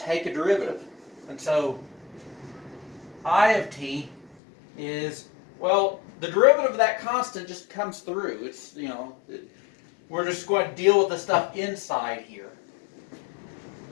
take a derivative. And so I of t is, well, the derivative of that constant just comes through. It's, we're just going to deal with the stuff inside here.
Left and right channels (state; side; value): drops out; right; at 4.4 s